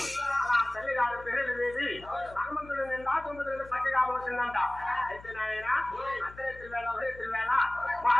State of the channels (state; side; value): noise; left; hum, 19 dB below the sound